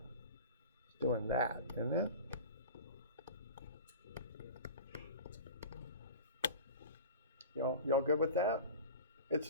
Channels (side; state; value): both; inverted; correlation -0.34